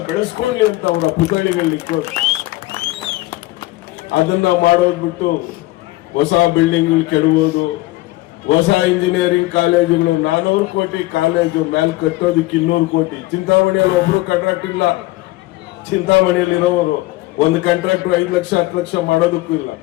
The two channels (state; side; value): quieter; right; 19.2 dB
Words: ಬೆಳೆಸ್ಕೊಳ್ಳಿ ಅಂತ ಅವರ ಪುತ್ಥಳಿಗಳನ್ನ ಇಕ್ಕೋದು. ಅದನ್ನ ಮಾಡೋದ್ ಬಿಟ್ಟು ಹೊಸ ಬಿಲ್ಡಿಂಗ್ಗಳು ಕೆಡಬೋದು, ಹೊಸ ಇಂಜಿನಿಯರಿಂಗ್ ಕಾಲೇಜುಗಳು 400 ಕೋಟಿ ಕಾಲೇಜು ಮೇಲೆ ಕಟ್ಟೋದಕ್ಕೆ 200 ಕೋಟಿ. ಚಿಂತಾಮಣಿಯಲ್ಲಿ ಒಬ್ರು ಕಾಂಟ್ರಾಕ್ಟ್ ಇಲ್ಲ. ಚಿಂತಾಮಣಿಯಲ್ಲಿರೋರು ಒಂದು ಕಾಂಟ್ರಾಕ್ಟ್ 5 ಲಕ್ಷ 10 ಲಕ್ಷ ಮಾಡೋದಕ್ಕೂ ಇಲ್ಲ.